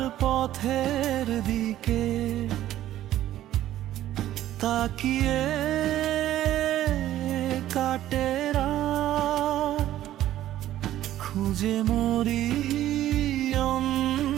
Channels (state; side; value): quieter; left; 13.2 dB